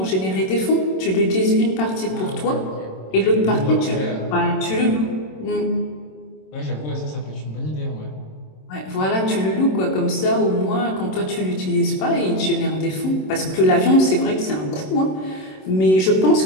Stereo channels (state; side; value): late; right; 27 ms